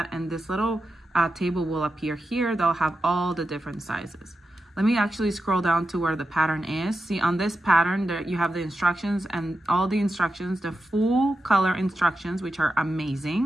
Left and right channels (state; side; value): normal; both; correlation 0.89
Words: and this little table will appear here. They'll have all the different sizes. Let me actually scroll down to where the pattern is. See, on this pattern, there you have the instructions, and all the instructions, the full color instructions, which are